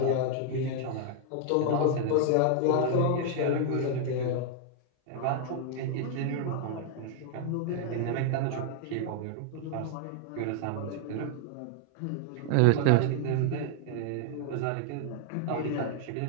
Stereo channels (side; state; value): both; different; correlation 0.00